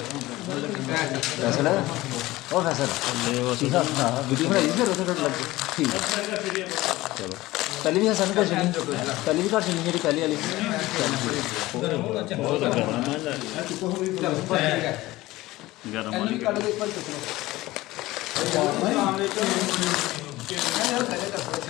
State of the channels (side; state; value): right; quieter; 18.3 dB